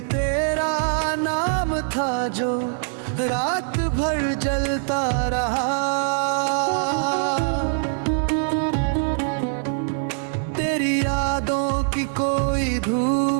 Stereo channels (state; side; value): silent; left; digital silence